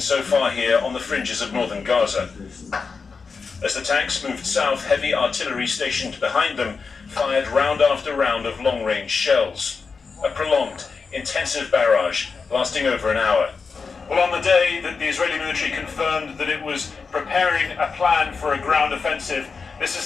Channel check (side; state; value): right; quieter; 5.0 dB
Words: far here on the fringes of northern Gaza. As the tanks moved south, heavy artillery stationed behind them fired round after round of long-range shells. A prolonged, intensive barrage lasting over an hour. Well, on the day that the Israeli military confirmed that it was preparing a plan for a ground offensive, this